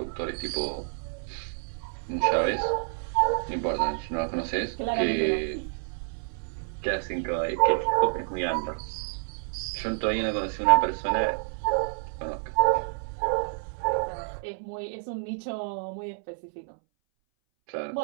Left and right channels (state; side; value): silent; left; 59 dB below the other